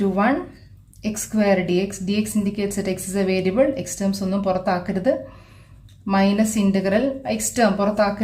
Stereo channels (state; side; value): identical; both; correlation 1.00